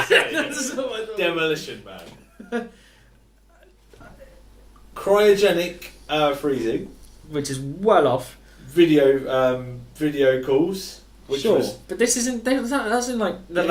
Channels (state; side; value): identical; both; correlation 1.00